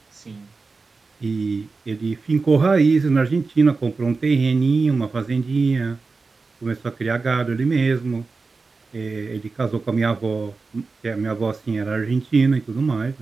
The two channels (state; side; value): quieter; left; 4.2 dB